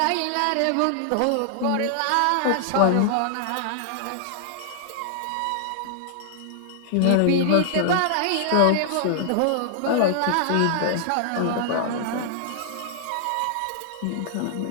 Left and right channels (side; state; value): both; different; correlation 0.00